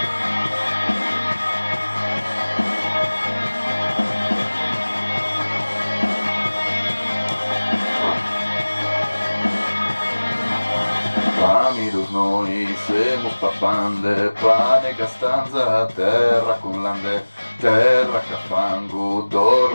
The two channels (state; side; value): inverted; both; correlation -1.00